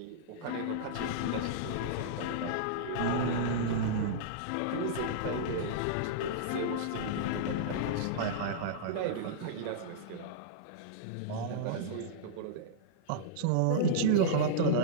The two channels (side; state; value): both; different; correlation -0.02